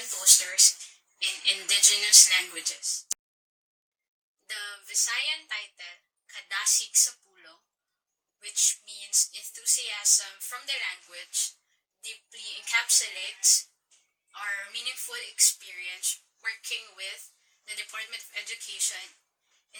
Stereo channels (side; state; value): both; identical; correlation 1.00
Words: Posters in Indigenous Languages. The Visayan title, Kadasig sa Pulong, which means enthusiasm from the language, deeply encapsulates our meaningful experience working with the Department of Education